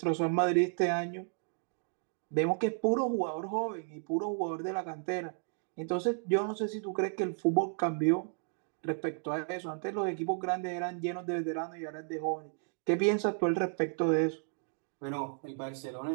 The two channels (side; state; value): left; silent; 56 dB below the other